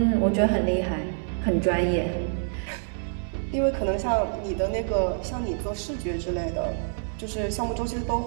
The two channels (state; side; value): silent; left; digital silence